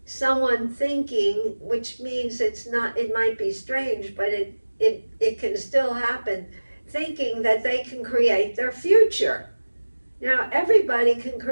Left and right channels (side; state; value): both; inverted; correlation -1.00